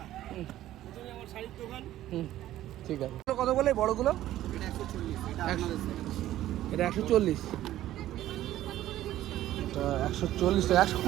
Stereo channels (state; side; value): quieter; left; 13.7 dB